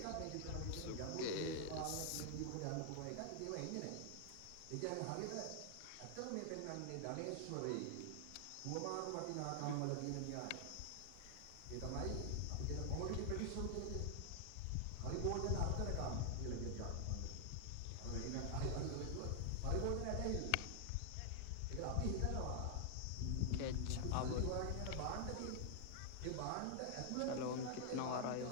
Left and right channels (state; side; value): different; both; correlation 0.00